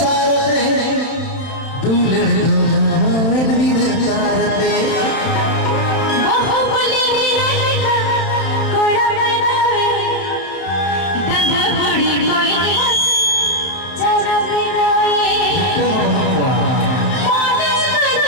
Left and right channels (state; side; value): late; right; 31 ms